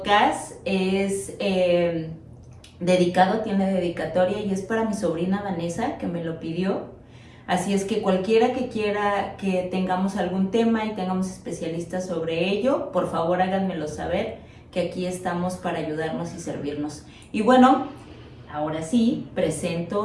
es dedicado, tiene dedicatoria y es para mi sobrina Vanessa, que me lo pidió. Así es que cualquiera que quiera que tengamos algún tema y tengamos especialistas sobre ello, por favor háganmelo saber, que aquí estamos para ayudarnos y servirnos. Y bueno, ahora sí,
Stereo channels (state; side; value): identical; both; correlation 1.00